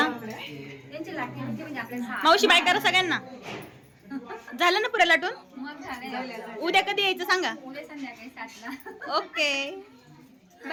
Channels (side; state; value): both; identical; correlation 1.00